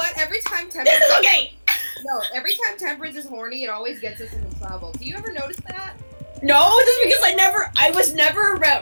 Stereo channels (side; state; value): both; inverted; correlation -1.00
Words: Every time This Temperance is okay! No, every time Temperance is horny, it always gets us into trouble. Do you ever notice that? No, just because I was never